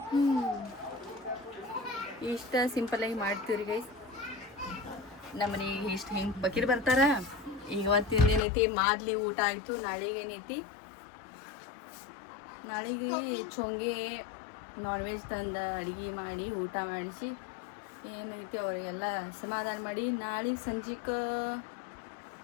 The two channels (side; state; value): right; drops out; at 8.4 s